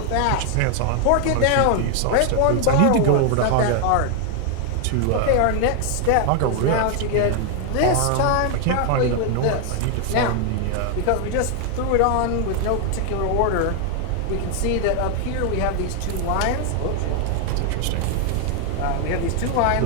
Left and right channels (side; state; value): both; different; correlation 0.00